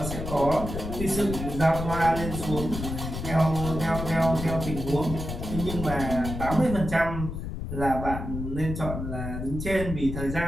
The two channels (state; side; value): noise; left; rumble, 6 dB below the sound